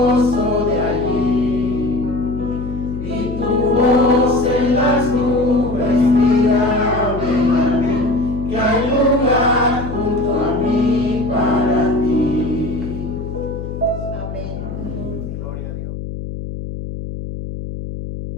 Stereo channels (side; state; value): left; noise; hum, 8 dB below the sound